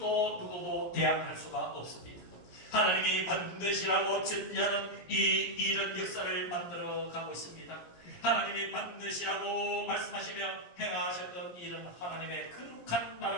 대항할 수가 없습니다. 하나님이 반드시라고 전제하는 이 일은 역사를 만들어 가고 있습니다. 하나님이 반드시라고 말씀하시며 행하셨던 일은 하나님의 거룩한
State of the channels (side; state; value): right; late; 17 ms